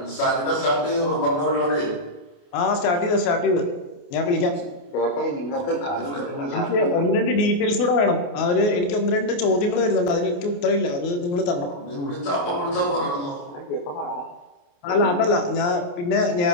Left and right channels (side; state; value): right; late; 28 ms